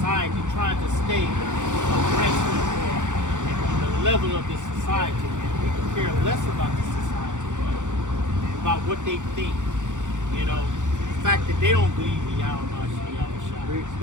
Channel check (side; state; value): left; late; 0.85 ms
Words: trying to stay abreast or in the level of this society. We can care less about the society, about what they think. The fact that they don't believe in Yahweh Shai. We